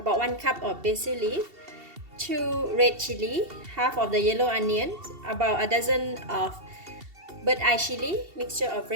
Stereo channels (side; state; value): left; late; 2.7 ms